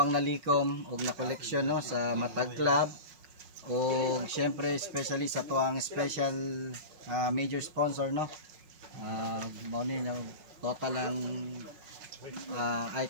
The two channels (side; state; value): left; late; 5.5 ms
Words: nalikom og na collection no sa Matag Club og syempre especially sa atuang special major sponsor no. Mao ni total ang